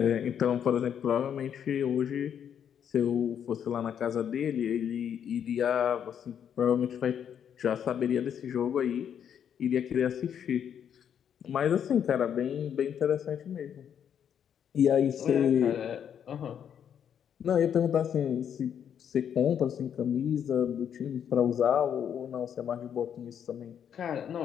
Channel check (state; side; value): quieter; right; 8.7 dB